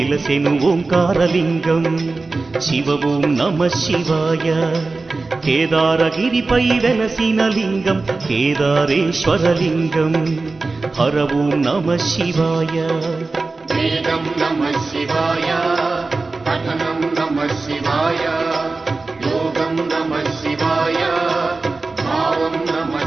ఓంకారలింగం శివ ఓం నమః శివాయ కేదారగిరిపై వెలసిన లింగం కేదారేశ్వరలింగం హర ఓం నమః శివాయ వేదం నమః శివాయ పఠనం నమః శివాయ యోగం నమః శివాయ భావం నమః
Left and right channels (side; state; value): left; quieter; 3.7 dB